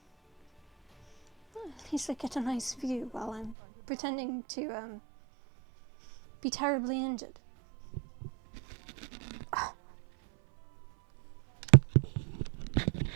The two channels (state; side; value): drops out; left; at 3.6 s